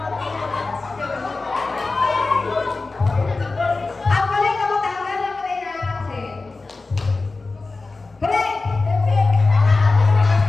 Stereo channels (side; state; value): right; quieter; 3.7 dB